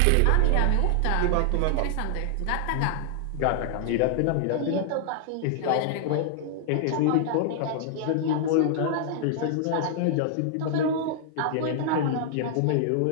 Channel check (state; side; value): different; both; correlation -0.01